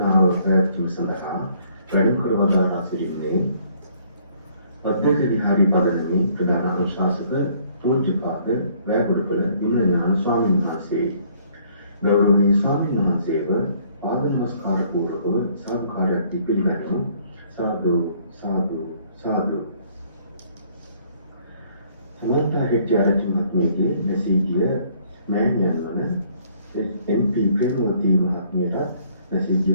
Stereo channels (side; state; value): both; inverted; correlation -0.62